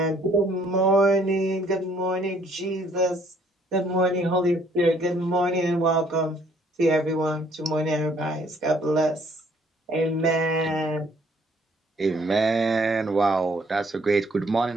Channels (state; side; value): normal; both; correlation 0.63